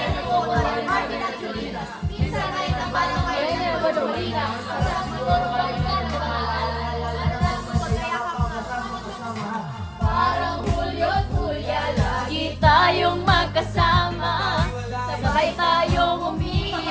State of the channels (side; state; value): both; identical; correlation 1.00